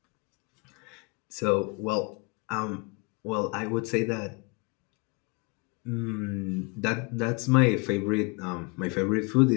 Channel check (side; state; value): right; quieter; 30.1 dB